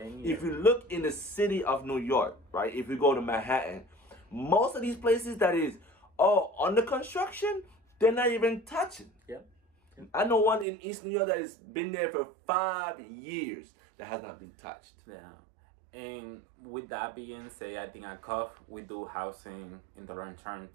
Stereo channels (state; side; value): drops out; left; at 10.7 s